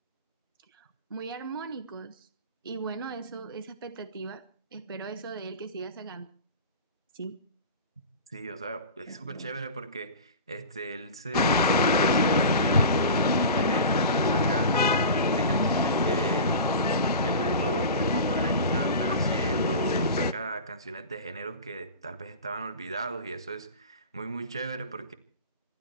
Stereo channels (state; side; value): inverted; both; correlation -0.33